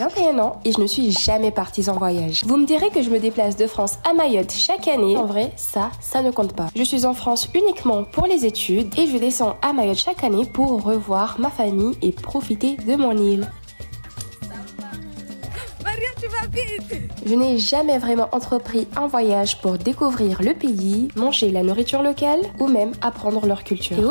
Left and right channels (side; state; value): both; inverted; correlation -1.00